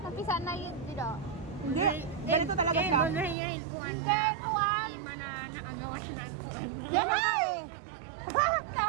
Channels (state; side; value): drops out; left; at 3.4 s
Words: Napisa na yun, dito. Hindi, ganito talaga siya. Eh, yan, kuwan Hindi, na. kuwan. Hindi man na naagawa siya ng kuwan. Yamay!